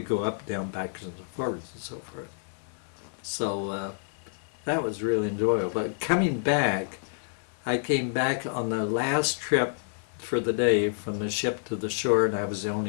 go up, down, backwards, and forwards, and so forth. So that was really enjoyable. But coming back, I came back on the last trip for the day from the ship to the shore, and I was the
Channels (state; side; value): silent; right; 59 dB below the other